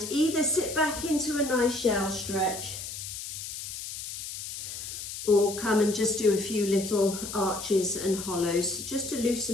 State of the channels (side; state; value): left; noise; hiss, 8 dB below the sound